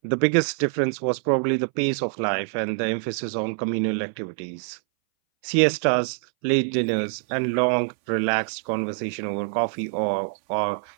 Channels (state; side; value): silent; left; 60 dB below the other